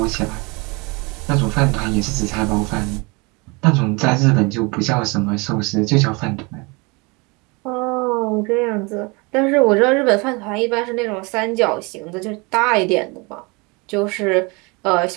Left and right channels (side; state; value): left; quieter; 27.9 dB